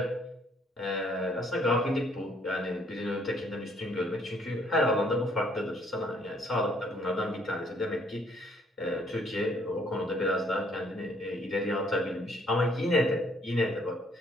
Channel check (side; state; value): both; normal; correlation 0.65